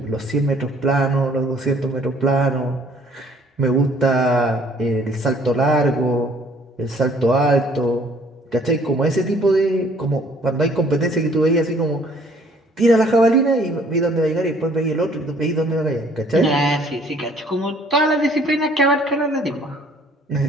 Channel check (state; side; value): normal; both; correlation 0.58